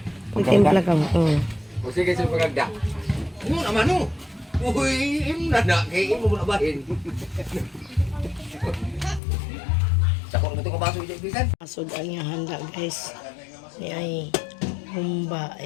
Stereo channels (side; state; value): right; drops out; at 9.2 s